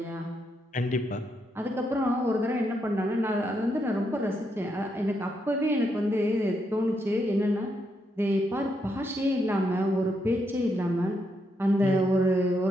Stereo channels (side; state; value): both; normal; correlation 0.79